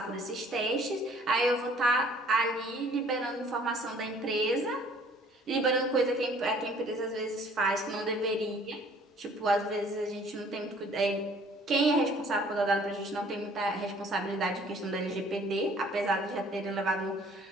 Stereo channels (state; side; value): normal; both; correlation 0.56